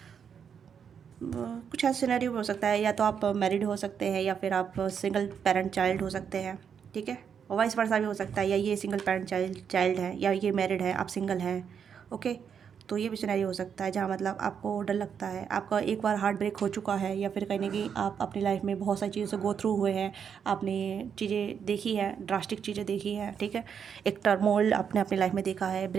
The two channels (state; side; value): quieter; left; 7.4 dB